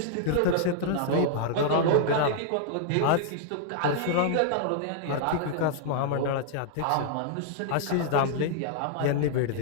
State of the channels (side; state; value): both; different; correlation -0.01